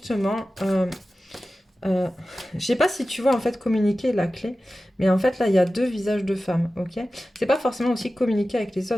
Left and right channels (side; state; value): both; normal; correlation 0.95